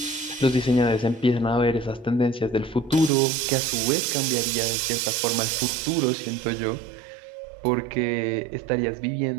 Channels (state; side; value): drops out; left; at 3.1 s